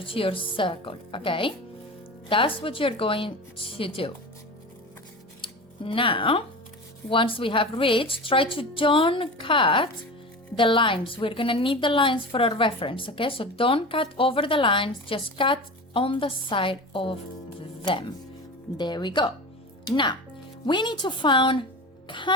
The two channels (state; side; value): normal; both; correlation 0.30